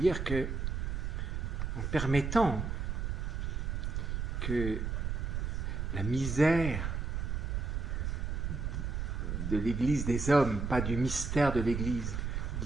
que, en permettant que la misère de l'Église des hommes, pas du mystère de l'Église.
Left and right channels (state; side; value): noise; right; rumble, 2 dB below the sound